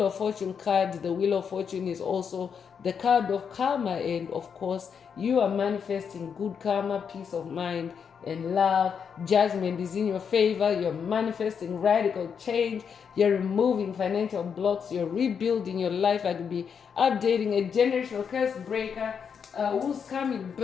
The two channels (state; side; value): quieter; right; 6.9 dB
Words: of Fortune card. The Wheel of Fortune is also the card of karma, and of course you are manifesting good karma, peace of mind and love. Judgment is in your favor. You're manifesting radical change. You're removing financial blocks. You're rebuilding your life. I could be updating a generational curse breaker whose karmic